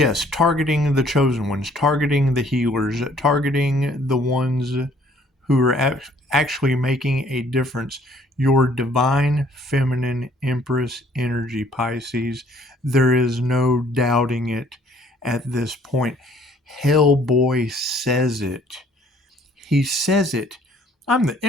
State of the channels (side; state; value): both; normal; correlation 0.59